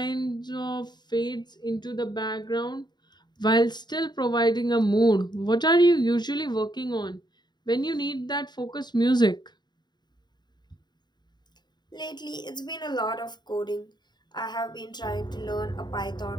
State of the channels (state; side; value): late; right; 0.21 ms